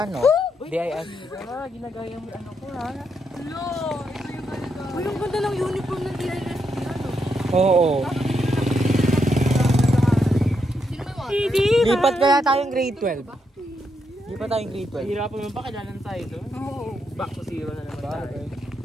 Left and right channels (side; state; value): both; normal; correlation 0.81